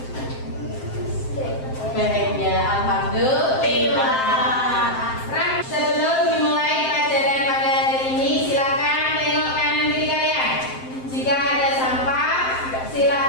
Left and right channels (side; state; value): right; late; 7.6 ms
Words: Bahagia, alhamdulillah. Sebelum dimulai pelajaran pada hari ini, silakan tengok kanan kiri kalian. Jika ada sampah,